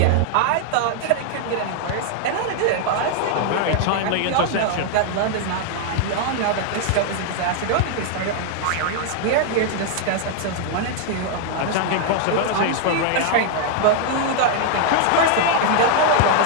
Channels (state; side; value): different; both; correlation 0.00